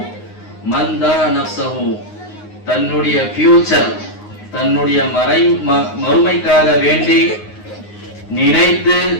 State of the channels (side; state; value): right; late; 9.6 ms